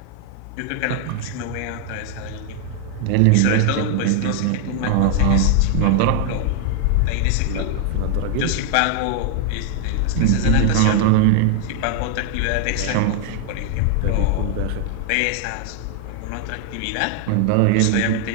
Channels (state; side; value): different; both; correlation 0.00